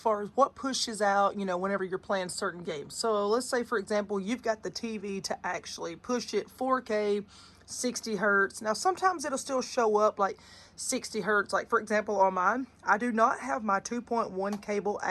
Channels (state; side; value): identical; both; correlation 1.00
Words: as what pushes out, whenever you're playing certain games. So let's say, for example, you've got the TV to actually push it 4K 60 hertz. Now sometimes it'll still show up like 60 hertz. Like, for example, on mine, I do not have my 2.1 cable